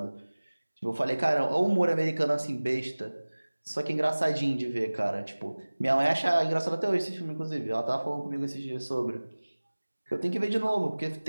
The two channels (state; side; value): inverted; both; correlation -1.00